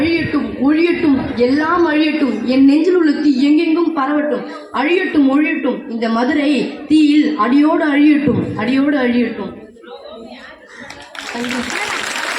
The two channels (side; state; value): both; identical; correlation 1.00